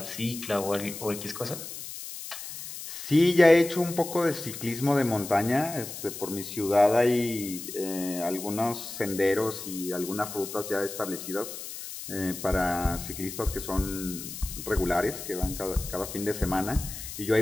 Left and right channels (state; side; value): noise; left; hiss, 10 dB below the sound